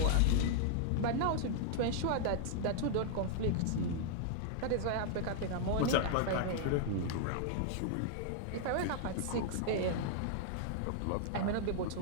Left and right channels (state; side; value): different; both; correlation -0.01